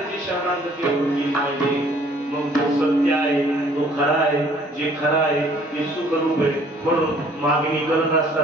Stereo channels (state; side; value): normal; both; correlation 0.58